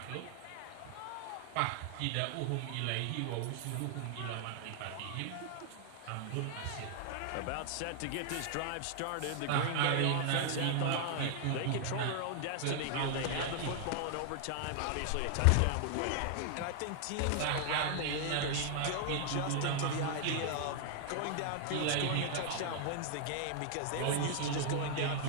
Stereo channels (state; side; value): different; both; correlation 0.00